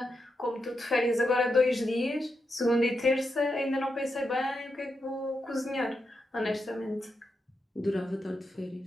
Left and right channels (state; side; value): normal; both; correlation 0.85